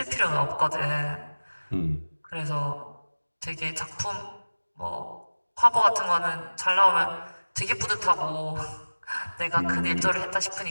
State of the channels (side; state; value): both; inverted; correlation -1.00